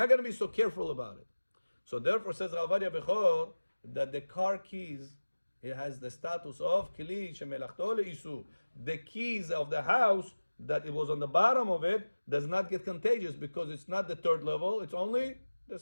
going to be so careful about it. So therefore, says Ovadia Bechor, that the car keys, it has the status of kli shemelachto le'isu. The keys of the house that it was on the bottom of it does not get contagious because it's not the third level, it's only the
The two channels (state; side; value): inverted; both; correlation -1.00